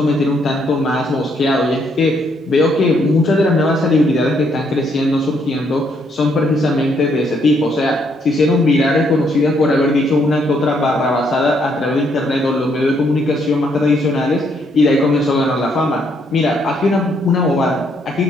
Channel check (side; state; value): both; normal; correlation 0.72